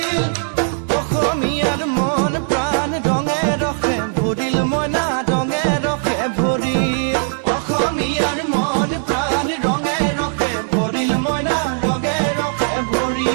অসমীয়াৰ মন প্ৰাণ ৰঙে ৰখে ভৰিল মইনা ৰঙে ৰখে ভৰিল অসমীয়াৰ মন প্ৰাণ ৰঙে ৰখে ভৰিল মইনা ৰঙে ৰখে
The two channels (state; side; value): silent; left; digital silence